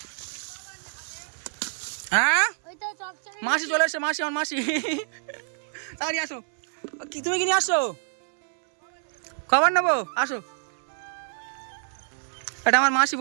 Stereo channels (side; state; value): left; silent; 60 dB below the other